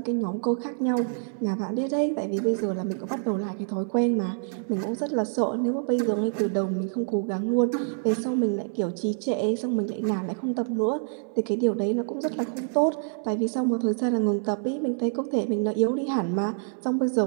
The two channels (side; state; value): left; silent; 60 dB below the other